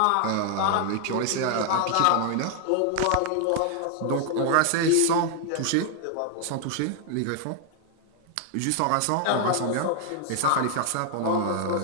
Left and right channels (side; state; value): both; different; correlation 0.00